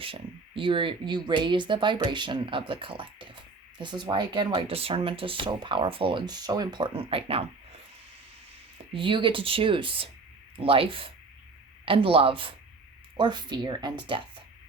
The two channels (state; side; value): quieter; left; 4.0 dB